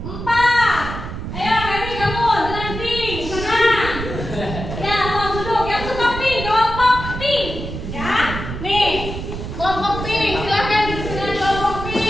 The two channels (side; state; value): right; noise; rumble, 7 dB below the sound